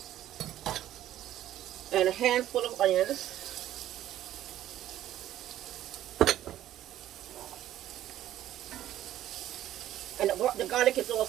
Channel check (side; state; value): left; quieter; 12.8 dB